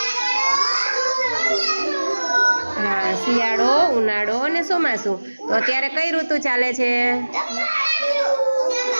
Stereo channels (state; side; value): inverted; both; correlation -1.00